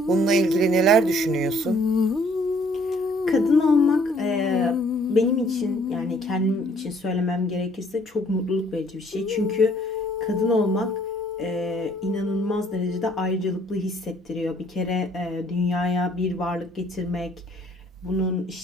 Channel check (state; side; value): normal; both; correlation 0.62